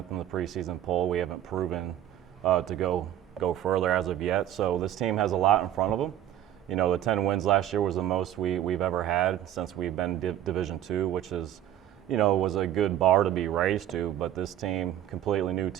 in the preseason poll. We haven't proven to go further as of yet. So this team has a lot in front of them. The 10 wins last year was the most we've ever had since we've been Division II, which is, was a good bar to be raised to. But this team, completely new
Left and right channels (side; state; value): left; quieter; 11.6 dB